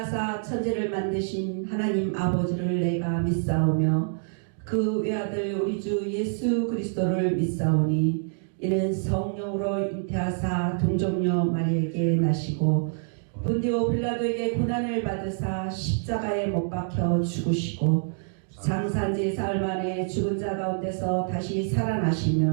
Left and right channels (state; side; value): silent; left; digital silence